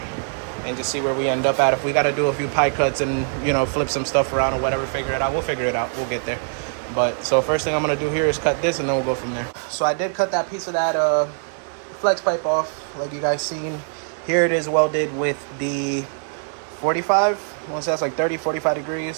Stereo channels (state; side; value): silent; left; 64 dB below the other